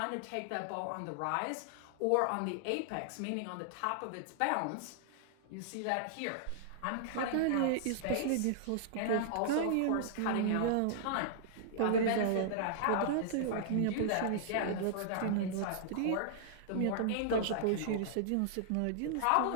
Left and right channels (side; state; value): both; different; correlation -0.01